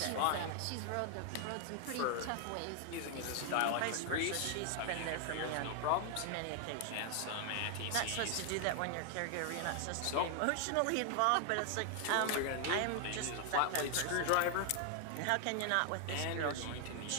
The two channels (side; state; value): both; different; correlation 0.00